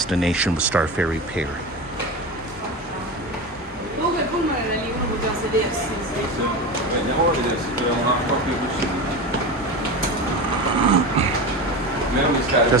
was Star Ferry Pier.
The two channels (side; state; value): both; normal; correlation 0.25